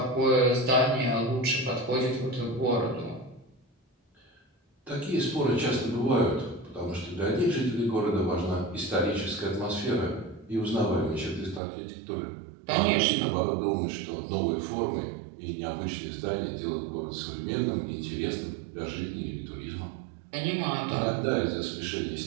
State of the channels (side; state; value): left; drops out; at 11.6 s